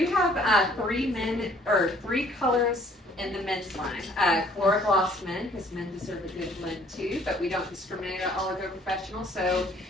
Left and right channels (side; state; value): both; normal; correlation 0.59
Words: have 3 colors in the men's line. Calura Gloss men, because men deserve a good blend too, but we don't discriminate at Oligo Professional. So